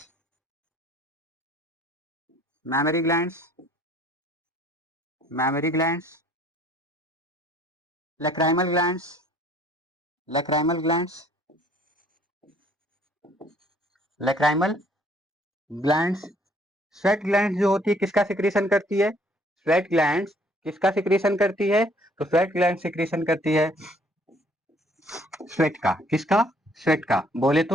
mammary glands, mammary glands, lacrimal glands, lacrimal glands, lacrimal glands. Sweat glands जो होती है किसका सिक्रीशन करती है? स्वेट ग्लैंड्स किसका सिक्रीशन करती है? तो स्वेट ग्लैंड सिक्रीशन करती है स्वेट का। किसका? स्वेट का। बोले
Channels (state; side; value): normal; both; correlation 0.60